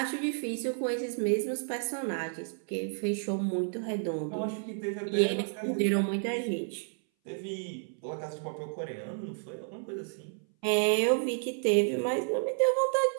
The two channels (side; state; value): left; silent; 57 dB below the other